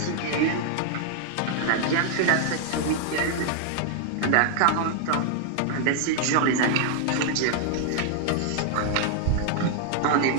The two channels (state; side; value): different; both; correlation 0.00